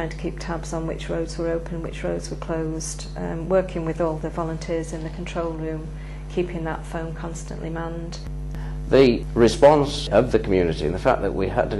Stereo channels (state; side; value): identical; both; correlation 1.00